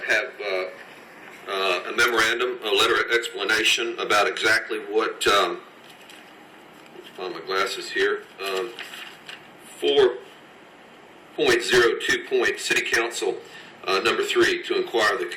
have a memorandum, a letter of explanation about exactly what, let's find my glasses here, 4.02 City Council, number 3, to inquire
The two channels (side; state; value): both; identical; correlation 1.00